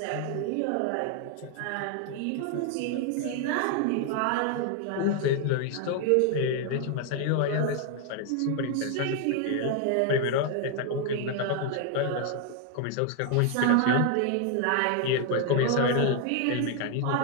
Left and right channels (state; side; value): different; both; correlation 0.01